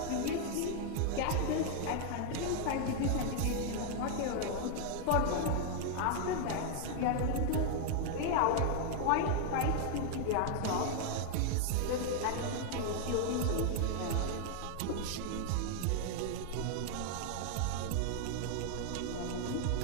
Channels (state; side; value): different; both; correlation 0.00